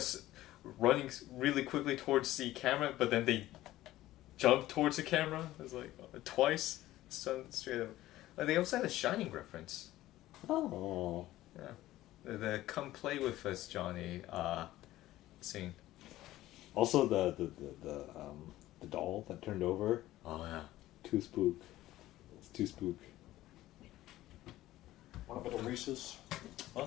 running really quickly towards the camera, but then they jumped towards the camera. It was like twice. Straight up. They also had a Shining reference. Oh. Yeah. The "Come play with us, Johnny" scene. Also the doll that turned over. Oh yeah. Too spook. It's too spook. Want a bit of Reese's?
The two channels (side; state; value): right; quieter; 15.6 dB